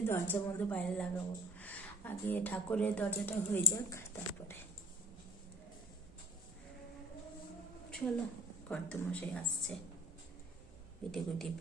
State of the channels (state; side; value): normal; both; correlation 0.51